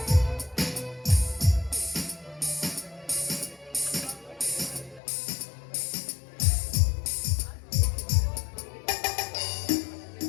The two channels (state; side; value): drops out; right; at 5.0 s